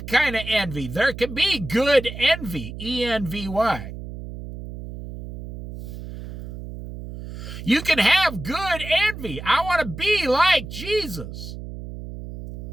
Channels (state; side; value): noise; right; hum, 11 dB below the sound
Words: kind of envy. There can be good envy, E-N-V-Y. You can have good envy. I want to be like Jesus.